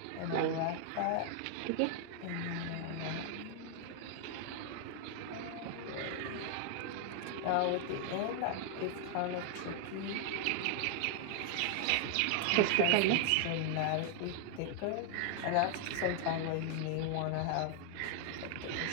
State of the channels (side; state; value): both; different; correlation 0.00